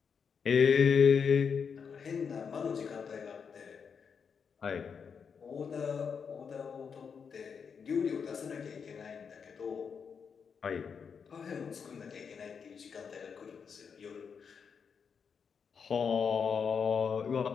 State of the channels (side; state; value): right; quieter; 6.3 dB